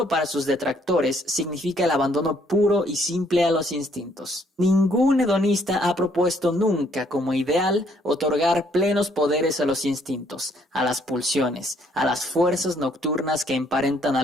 para sus detractores significa el abandono puro y simple a los instintos. Ningún hedonista ha propuesto nunca como ideal otorgar plenos poderes a los instintos, a las pulsiones, a las fuerzas nocturnas que emparentan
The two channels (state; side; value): normal; both; correlation 0.66